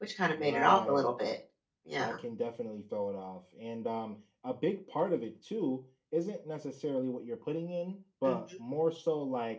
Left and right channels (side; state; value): both; identical; correlation 1.00